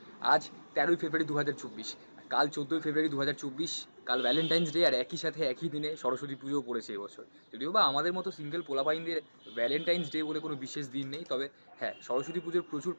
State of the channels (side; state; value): both; inverted; correlation -1.00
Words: আজ 13ই ফেব্রুয়ারি 2024, কাল 14ই ফেব্রুয়ারি 2024, কাল ভ্যালেন্টাইন্স ডে। আর একই সাথে একই দিনে সরস্বতী পুজোও পড়েছে এবছর। যদিও বা আমাদের মতো সিঙ্গেল পোলাপাইনদের ভ্যালেন্টাইন্স ডে বলে কোনো বিশেষ দিন নেই, তবে হ্যাঁ, সরস্বতী পুজোর প্রচুর